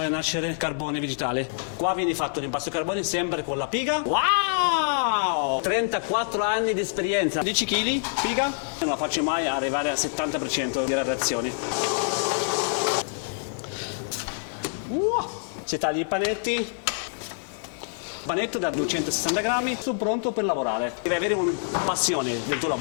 nascere carbone vegetale. Qua viene fatto l'impasto carbone sempre con la piga. Wow! 34 anni di esperienza. 10 kg piga. Non la faccio mai arrivare al 70% di radiazioni. Si taglia i panetti. Panetto da 260 grammi. Sono pronto per lavorare. Devi avere una passione del tuo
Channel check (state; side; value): silent; right; 60 dB below the other